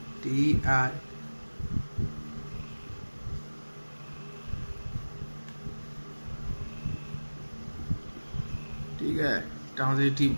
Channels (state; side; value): inverted; both; correlation -1.00